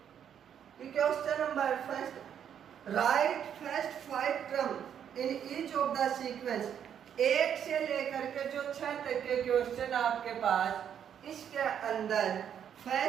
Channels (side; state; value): left; quieter; 8.8 dB